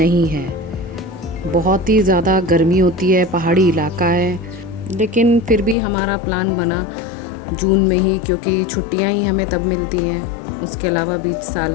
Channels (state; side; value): drops out; right; at 5.8 s